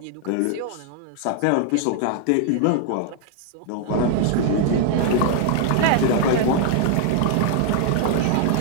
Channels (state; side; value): different; both; correlation 0.00